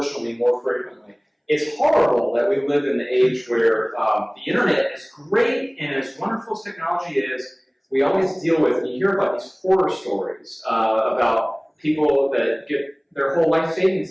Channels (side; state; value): both; identical; correlation 1.00